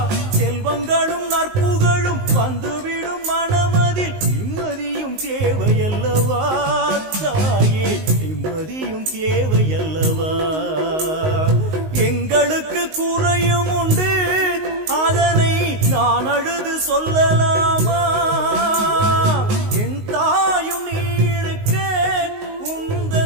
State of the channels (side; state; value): left; late; 19 ms